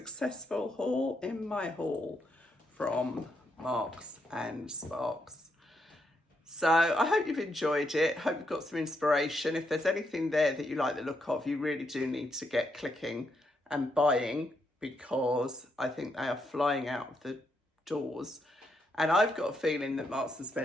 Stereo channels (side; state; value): both; normal; correlation 0.79